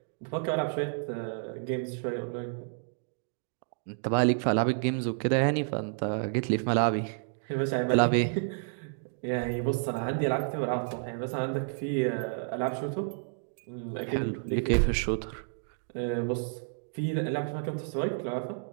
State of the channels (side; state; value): left; silent; digital silence